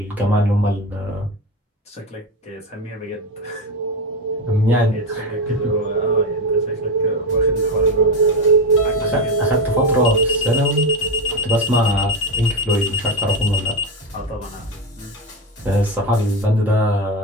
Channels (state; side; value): normal; both; correlation 0.15